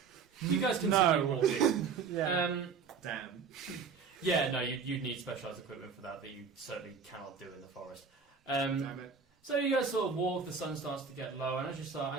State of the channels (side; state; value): left; quieter; 5.7 dB